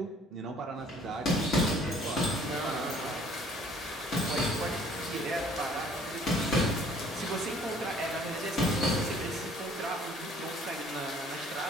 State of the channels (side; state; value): both; normal; correlation 0.56